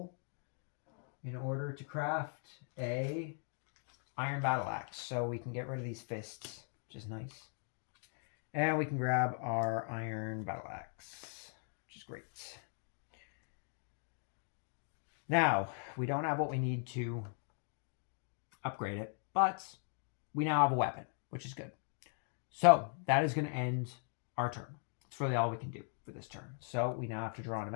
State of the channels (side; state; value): right; silent; 52 dB below the other